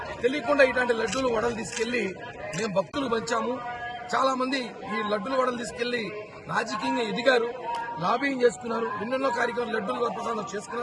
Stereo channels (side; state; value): both; identical; correlation 1.00